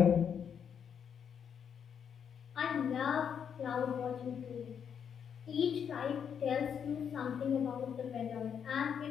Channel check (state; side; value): quieter; right; 7.7 dB